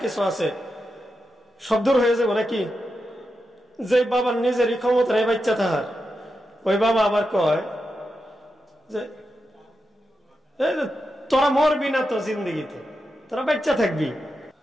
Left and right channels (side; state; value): both; normal; correlation 0.88